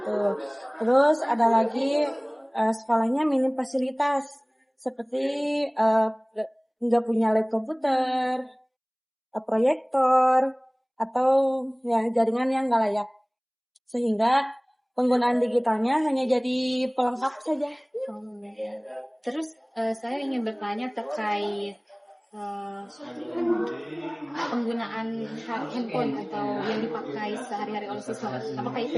Terus ada lagi sekolahnya minim fasilitas seperti nggak punya lab komputer, proyektor atau ya jaringan yang nggak layak. Sehingga penggunaan digitalnya hanya jadi pelengkap saja. Terus saya ingin bertanya terkait penggunaan handphone atau yang dipakai sehari-hari oleh siswa. Apakah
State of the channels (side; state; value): both; identical; correlation 1.00